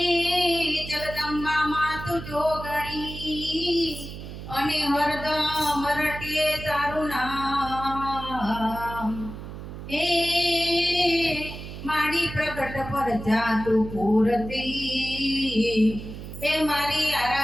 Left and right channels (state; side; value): noise; right; hum, 10 dB below the sound